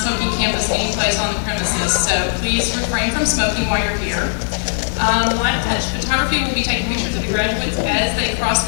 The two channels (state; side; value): silent; right; 61 dB below the other